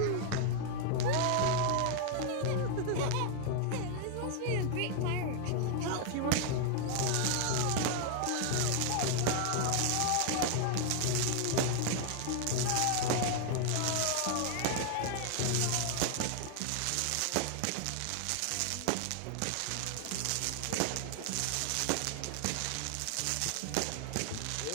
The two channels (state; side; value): different; both; correlation 0.00